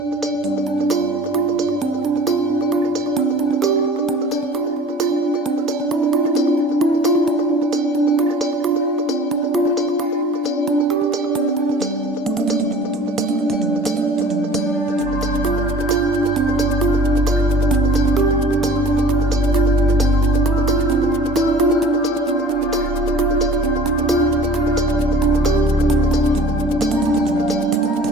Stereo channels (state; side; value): normal; both; correlation 0.45